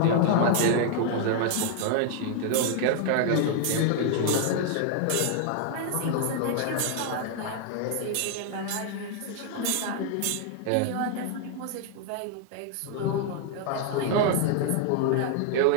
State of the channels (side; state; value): both; different; correlation 0.00